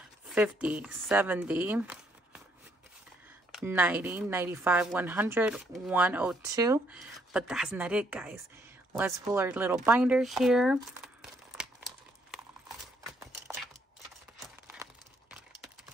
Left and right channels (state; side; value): normal; both; correlation 0.70